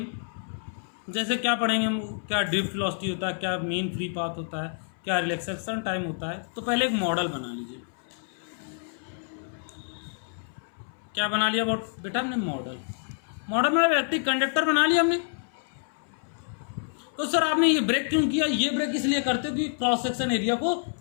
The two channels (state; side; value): silent; right; 59 dB below the other